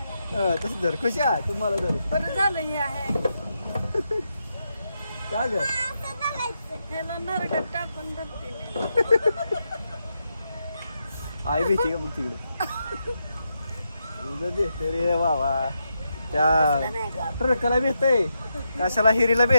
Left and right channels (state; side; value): inverted; both; correlation -0.84